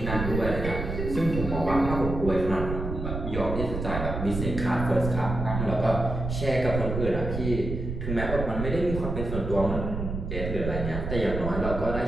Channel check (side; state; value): right; noise; rumble, 4 dB below the sound